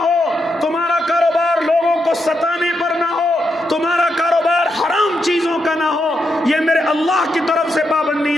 ہو، تمہارا کاروبار لوگوں کو ستانے پر نہ ہو، تمہارا کاروبار حرام چیزوں کا نہ ہو۔ یہ میرے اللہ کی طرف سے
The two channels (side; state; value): both; normal; correlation 0.82